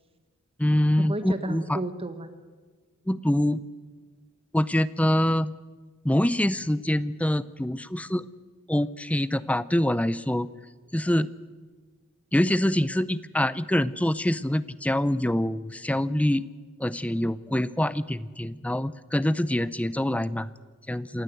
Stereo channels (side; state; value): both; normal; correlation 0.93